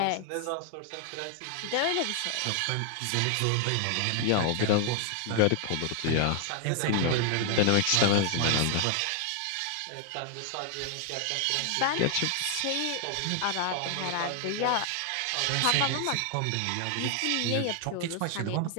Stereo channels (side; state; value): both; different; correlation 0.00